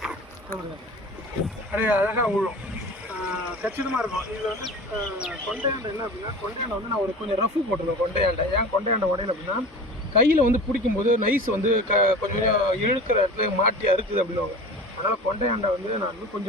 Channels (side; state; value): both; normal; correlation 0.36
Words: அப்படியே அழகாக விழும், கச்சிதமாக இருக்கும். இதில் வந்து கொண்டையாண்டை என்ன அப்படின்னா, கொண்டையாண்டை வந்து நான் ஒரு கொஞ்சம் ரஃபு போட்டிருக்கேன். கொண்டையாண்டை ஏன் கொண்டையாண்டை உடையில அப்படின்னா, கையில் வந்து பிடிக்கும்போது நைஸ் வந்து கொஞ்சம் இழுக்கிற இடத்துல மாட்டி அறுக்குது அப்படின்வாங்க. அதனால் கொண்டையாண்டை வந்து நான் வந்து